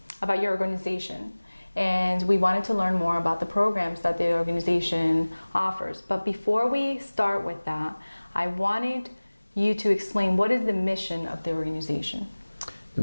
your organization. And we wanted to learn more about the programs that the organization offers. But before we start with that, I wanted you to explain what is the mission of the organization. The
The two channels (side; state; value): both; inverted; correlation -1.00